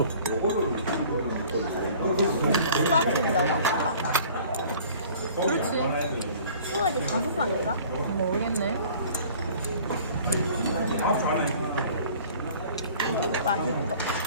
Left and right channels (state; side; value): inverted; both; correlation -0.49